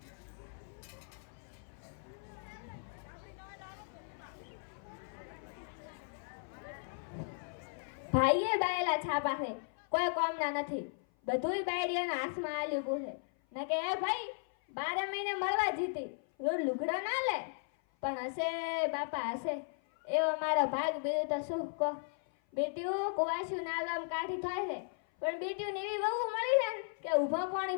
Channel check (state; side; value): silent; right; 54 dB below the other